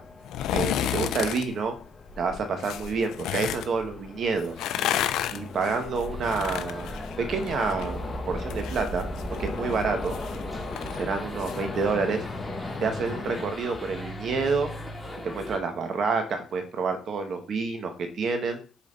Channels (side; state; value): both; normal; correlation 0.66